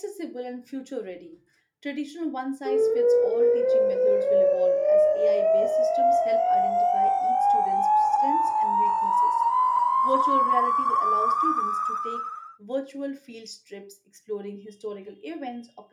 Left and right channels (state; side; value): identical; both; correlation 1.00